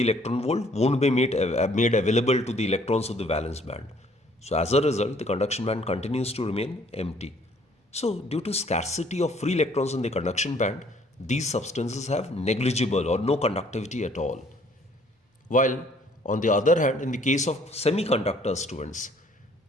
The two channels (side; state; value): both; normal; correlation 0.61